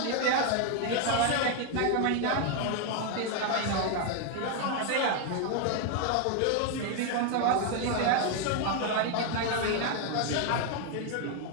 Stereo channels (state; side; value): different; both; correlation 0.01